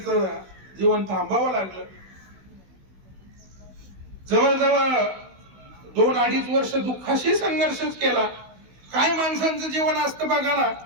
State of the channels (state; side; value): late; left; 16 ms